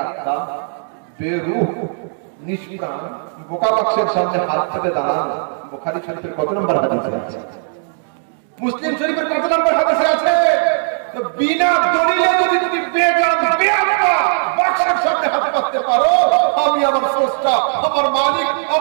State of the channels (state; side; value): silent; left; digital silence